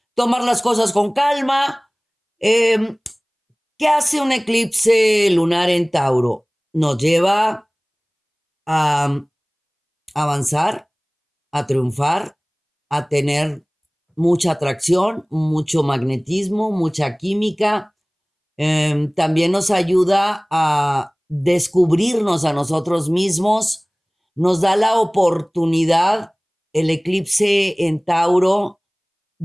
tomar las cosas con calma. Eh, ¿Qué hace un eclipse lunar en Tauro? Nos lleva a avanzar, a triunfar, a tener mucha atracción, mucho magnetismo, mucha química. También nos ayuda a descubrirnos a nosotros mismos, nos da la oportunidad, el eclipse en Tauro,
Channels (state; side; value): identical; both; correlation 1.00